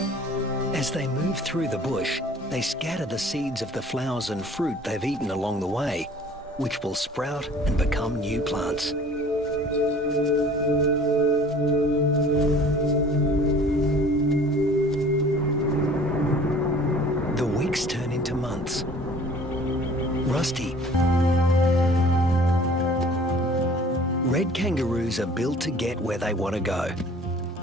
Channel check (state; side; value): normal; both; correlation 0.50